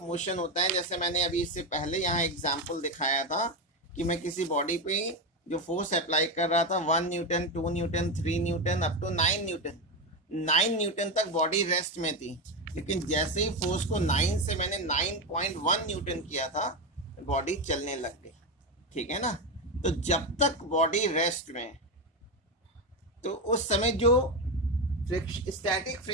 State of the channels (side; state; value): both; normal; correlation 0.13